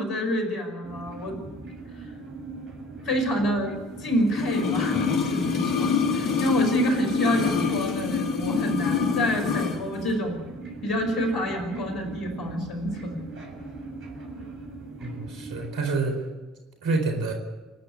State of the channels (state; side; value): normal; both; correlation 0.47